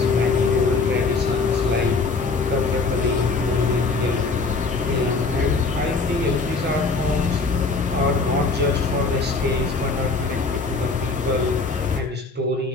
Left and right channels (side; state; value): right; quieter; 4.0 dB